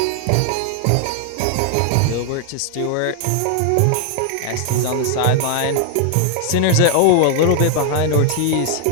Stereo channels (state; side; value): different; both; correlation 0.00